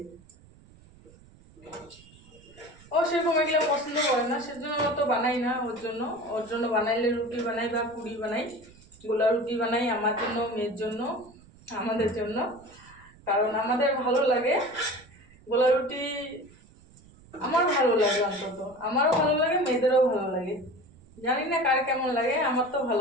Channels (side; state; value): right; noise; rumble, 25 dB below the sound